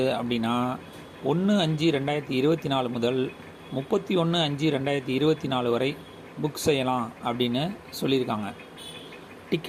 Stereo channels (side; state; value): both; identical; correlation 1.00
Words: அப்படின்னா 1/5/2024 முதல் 31/5/2024 வரை புக் செய்யலாம் அப்படின்னு சொல்லியிருக்காங்க.